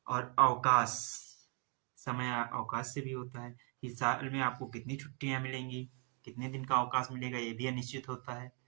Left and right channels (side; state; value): left; quieter; 39.1 dB